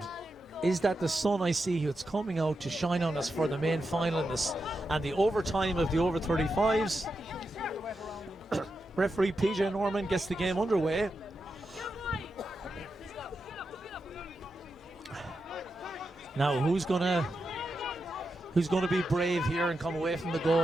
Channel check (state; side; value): normal; both; correlation 0.88